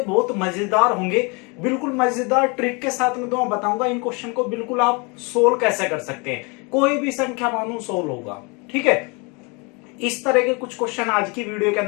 बहुत मजेदार होंगे। बिल्कुल मजेदार ट्रिक के साथ में तो मैं बताऊंगा इन क्वेश्चन को बिल्कुल आप सोल्व कैसे कर सकते हैं। कोई भी संख्या मानो सोल्व होगा, ठीक है। इस तरह के कुछ क्वेश्चन आज की वीडियो के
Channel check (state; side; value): quieter; right; 30.2 dB